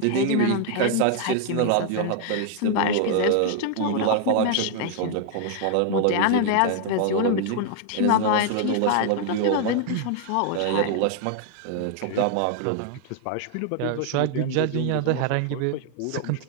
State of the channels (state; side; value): different; both; correlation 0.00